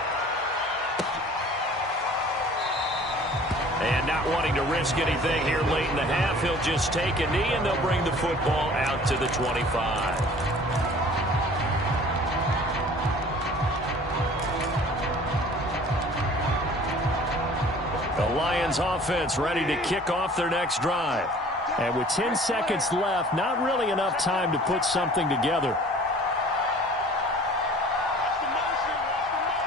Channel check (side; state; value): both; normal; correlation 0.48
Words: And not wanting to risk anything here late in the half, he'll just take a knee and they'll bring the football out to the 25. The Lions offense ready to kick off their next drive. And with 10 seconds left, not really enough time to put something together.